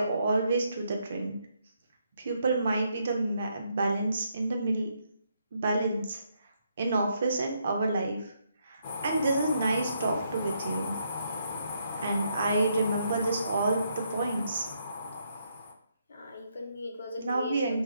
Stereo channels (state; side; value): inverted; both; correlation -0.76